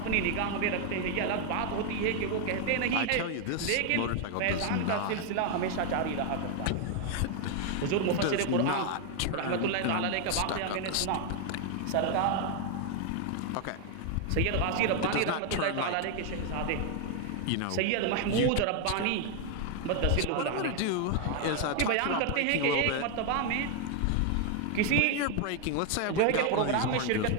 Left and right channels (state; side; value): different; both; correlation 0.00